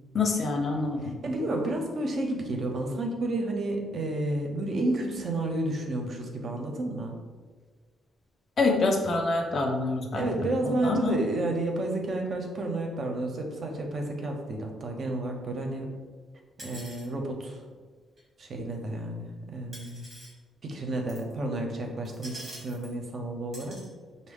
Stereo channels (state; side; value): normal; both; correlation 0.69